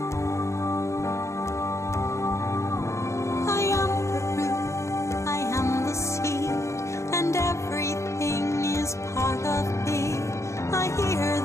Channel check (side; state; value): right; late; 0.14 ms